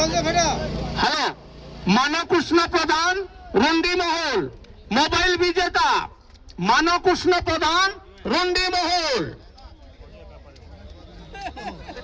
मानव कृष्ण प्रधान रुंडी महल मोबाइल विजेता मानव कृष्ण प्रधान रुंडी महल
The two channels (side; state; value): both; identical; correlation 1.00